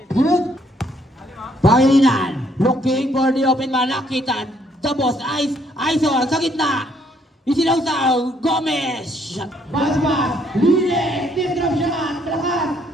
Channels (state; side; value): normal; both; correlation 0.67